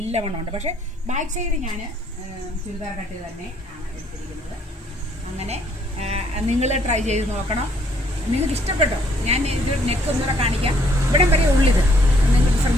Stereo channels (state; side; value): normal; both; correlation 0.65